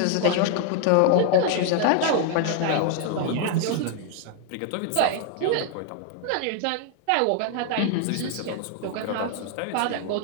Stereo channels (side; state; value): both; different; correlation 0.00